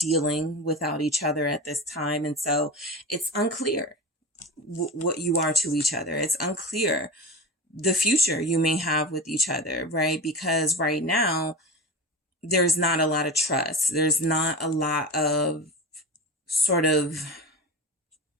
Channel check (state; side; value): normal; both; correlation 0.27